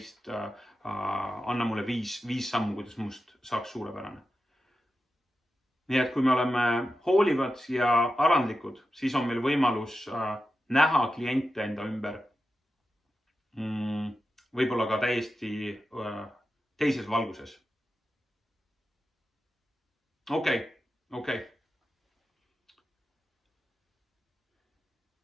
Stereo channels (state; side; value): normal; both; correlation 0.91